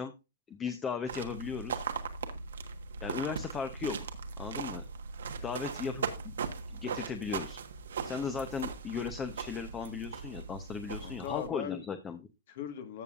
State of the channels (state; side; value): normal; both; correlation 0.08